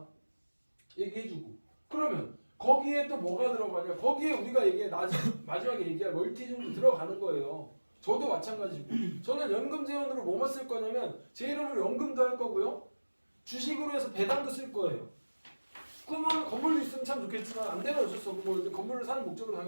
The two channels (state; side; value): inverted; both; correlation -1.00